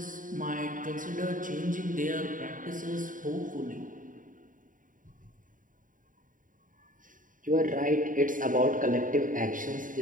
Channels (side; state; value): left; late; 0.39 ms